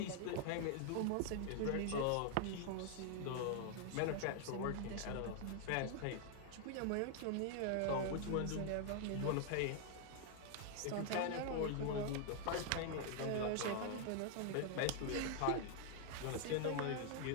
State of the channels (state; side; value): different; both; correlation 0.00